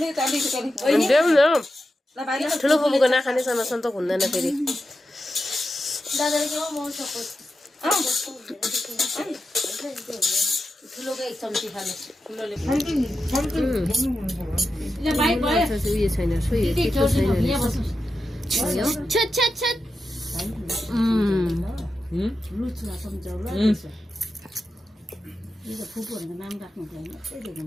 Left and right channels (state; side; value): normal; both; correlation 0.90